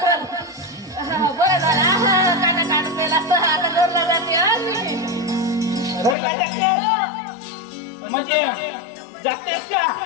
बरं. बरं झालं काटा काट पेला असता आता घरला जाते हा मी. घरला जातेस? म्हणजे जातेस का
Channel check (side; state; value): right; drops out; at 6.2 s